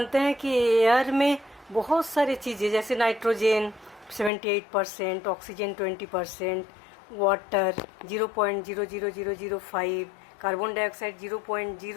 हैं कि एयर में बहुत सारी चीज़ें जैसे nitrogen 78%, oxygen 20%, water 0.00005, carbon dioxide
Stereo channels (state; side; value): drops out; right; at 4.3 s